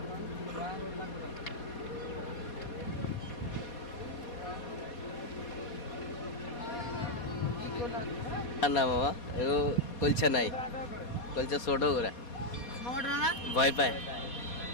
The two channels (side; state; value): right; late; 4.2 ms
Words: না মামা, এগো কলছা নাই, কলছা ছোট করে ভয় পায়।